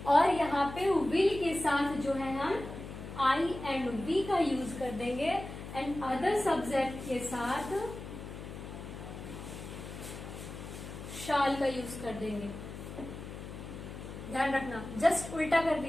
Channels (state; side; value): noise; left; hum, 10 dB below the sound